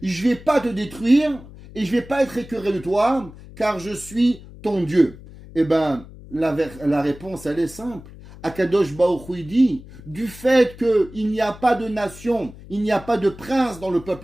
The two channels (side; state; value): left; noise; hum, 18 dB below the sound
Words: je ne vais pas te détruire et je ne vais pas être écœuré de toi, car je suis ton Dieu. Eh bien, la réponse, elle est simple. Akadosh Baruch Hu dit, du fait qu'il n'y a pas de nation, il n'y a pas de prince dans le